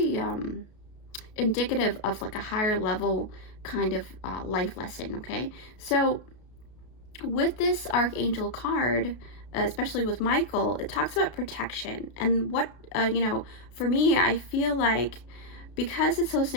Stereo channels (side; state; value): right; late; 32 ms